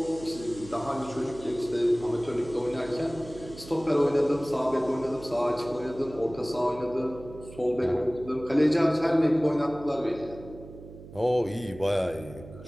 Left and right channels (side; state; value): right; noise; hum, 16 dB below the sound